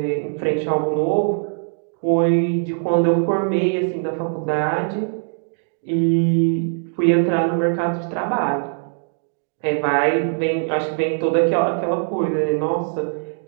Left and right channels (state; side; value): silent; left; digital silence